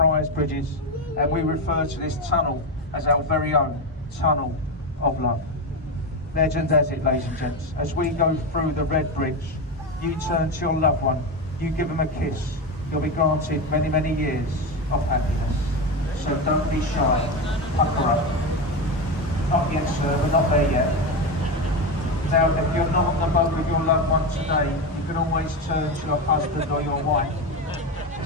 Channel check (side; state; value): both; normal; correlation 0.15